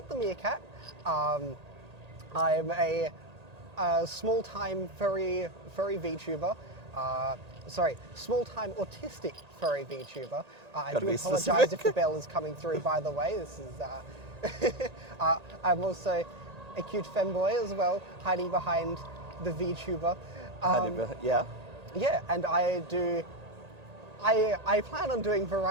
I'm a small-time furry VTuber. Small-time autistic furry VTuber. I do apologise if the bell is coming through, by the way. This is. I'm also a cute femboy as well, hiding behind the VTuber. Yeah. Yeah, and I plan on doing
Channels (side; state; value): left; late; 1.8 ms